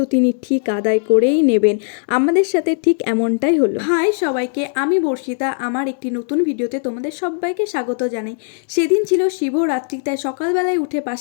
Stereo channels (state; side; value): silent; right; digital silence